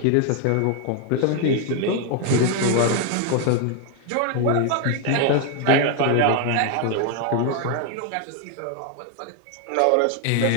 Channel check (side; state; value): both; different; correlation 0.01